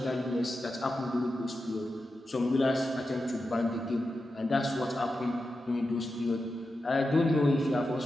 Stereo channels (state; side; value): normal; both; correlation 0.90